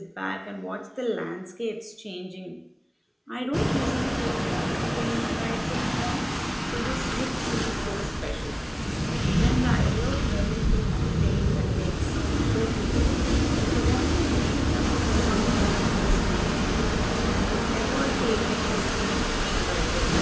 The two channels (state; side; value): identical; both; correlation 1.00